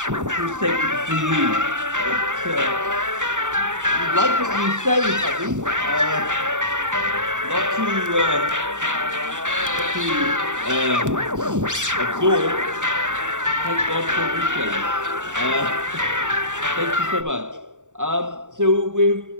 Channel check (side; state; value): left; late; 0.86 ms